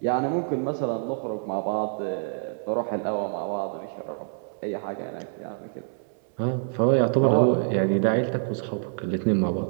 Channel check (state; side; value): silent; left; 61 dB below the other